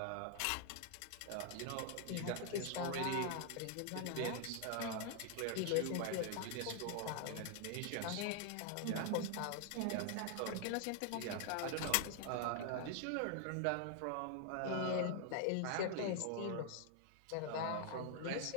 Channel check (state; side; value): different; both; correlation 0.00